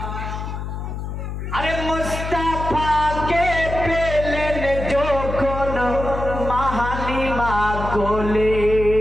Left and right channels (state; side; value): noise; left; hum, 6 dB below the sound